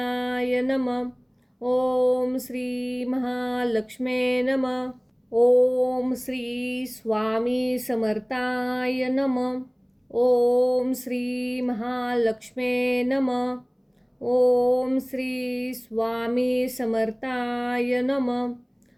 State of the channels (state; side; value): identical; both; correlation 1.00